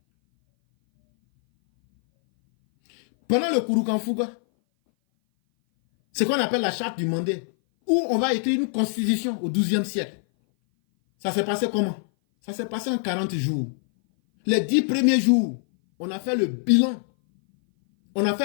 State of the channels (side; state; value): right; silent; 58 dB below the other